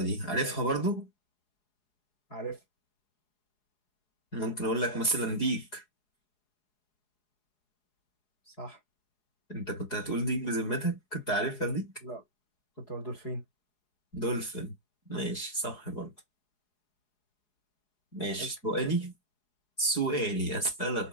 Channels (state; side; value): late; right; 4.8 ms